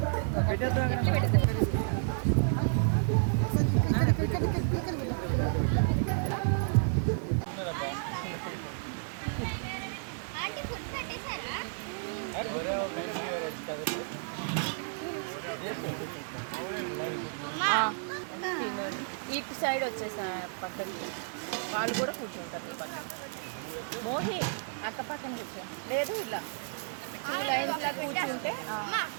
ఇటు సైడ్ వచ్చేసా పక్కకి వాళ్ళు కూడా కూర్చుంటారు. పక్కన మోహి అక్క పక్కన కూర్చో. లేదు ఇలా లైన్స్లా కూర్చుంటే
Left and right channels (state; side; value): silent; left; digital silence